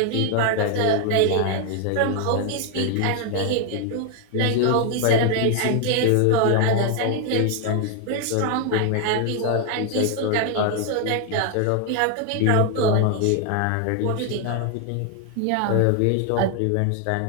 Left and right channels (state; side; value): different; both; correlation 0.00